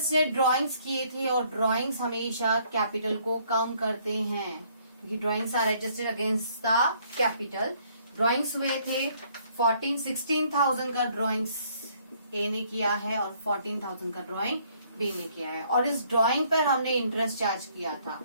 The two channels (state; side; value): inverted; both; correlation -0.65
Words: ने ड्राइंग्स किए थे, और ड्राइंग्स हमेशा कैपिटल को कम करते हैं क्योंकि drawings are adjusted against the capital. Drawings हुए थे 16,000 का ड्राइंग्स A ने किया है और 14,000 का ड्राइंग B ने किया है, और इस ड्राइंग पर हमने इंटरेस्ट चार्ज किया था।